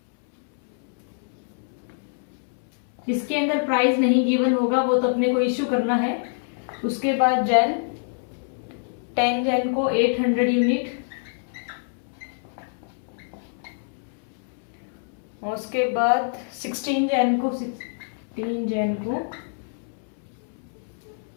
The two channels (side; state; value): right; silent; 61 dB below the other